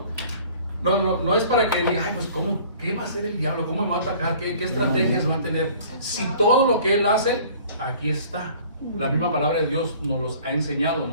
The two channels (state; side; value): inverted; both; correlation -0.50